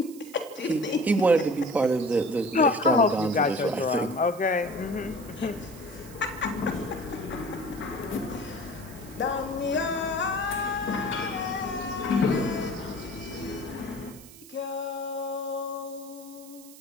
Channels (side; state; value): right; noise; hiss, 19 dB below the sound